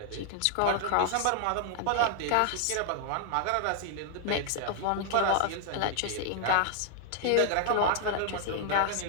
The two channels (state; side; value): different; both; correlation 0.00